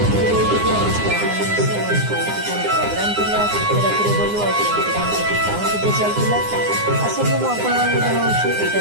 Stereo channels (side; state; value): left; late; 9.7 ms